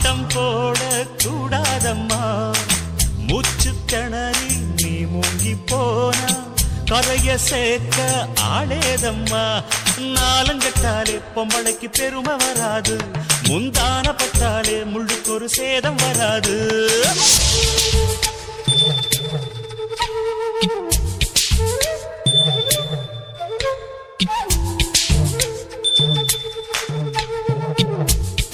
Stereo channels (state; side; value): identical; both; correlation 1.00